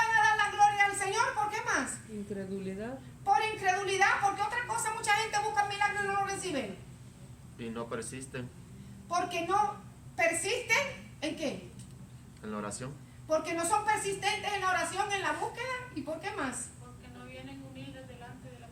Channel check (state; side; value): identical; both; correlation 1.00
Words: a dar la gloria al Señor. ¿Por qué más? Incredulidad. Por incredulidad. Porque otra cosa, mucha gente busca milagros y no lo reciben. Y no persisten Porque no persisten en qué. en la oración. Porque no son persistentes en la oración, en la búsqueda. ¿Y por qué más? Porque no vienen humildes delante de la